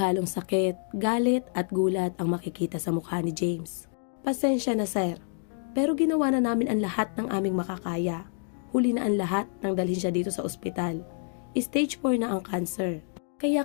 sakit, galit at gulat ang makikita sa mukha ni James. Pasensya na sir, pero ginawa na namin ang lahat ng aming makakaya. Huli na ang lahat nang dalhin siya dito sa ospital. Stage 4 na ang cancer.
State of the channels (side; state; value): right; silent; 59 dB below the other